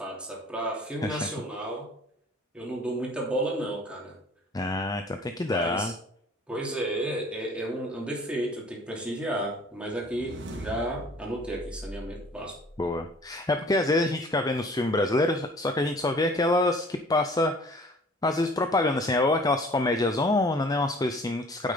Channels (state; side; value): normal; both; correlation 0.51